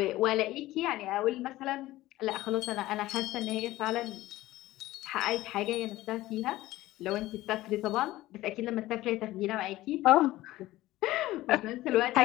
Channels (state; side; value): quieter; right; 16.8 dB